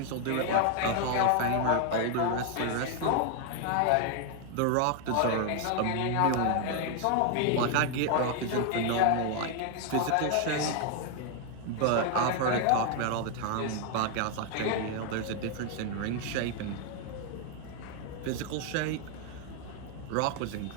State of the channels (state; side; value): different; both; correlation 0.00